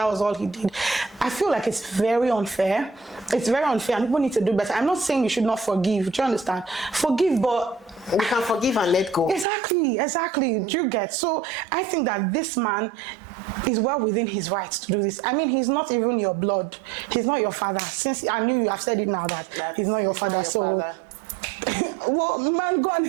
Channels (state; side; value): drops out; left; at 9.5 s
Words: was all he did. I feel like it's very unfair. It's very unfair, and people need to do better. I'm not saying you should not forgive. Do you understand? Forgive, but we can forgive and let go. Exactly. Do you get? So I think that this man is well within his rights to do this. I mean, he's not even your blood. He's not your father. Since I knew you have said it now that he's not your father. Well, man, go and